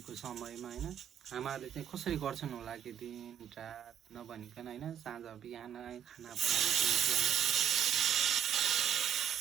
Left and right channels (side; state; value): left; quieter; 9.1 dB